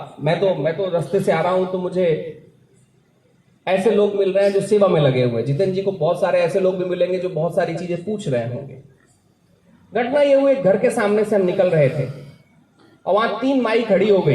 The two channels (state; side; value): identical; both; correlation 1.00